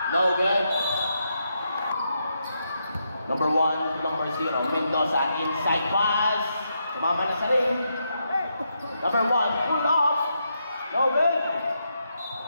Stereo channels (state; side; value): inverted; both; correlation -0.81